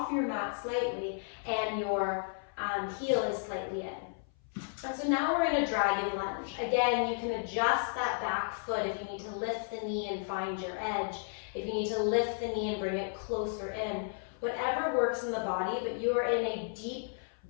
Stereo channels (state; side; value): silent; right; 56 dB below the other